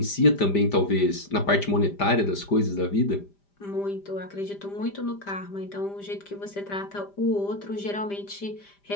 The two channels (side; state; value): right; late; 5.0 ms